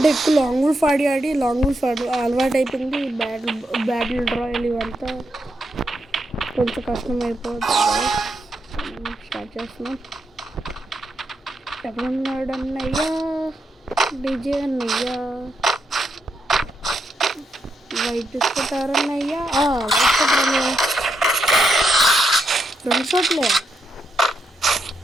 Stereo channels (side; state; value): both; normal; correlation 0.81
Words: ఎక్కువ లాంగ్ వూల్ఫ్ ఆడి లాంగ్ వూల్ఫ్ అలవాటు అయిపోయింది. బ్యాటిల్ రాయల్ ఇవంతా కొంచెం కష్టం అయిపోతుంది. స్టార్ట్ చేస్తున్నాం. ఎక్కడున్నాడు అన్నయ్యా, డీజే అన్నయ్యా, వైట్ తీసుకుంటారన్నయ్యా, వైట్ కొట్టారన్నయ్యా. 2 షాట్లే.